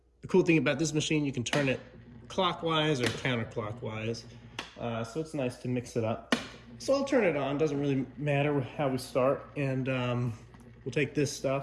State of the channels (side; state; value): both; identical; correlation 1.00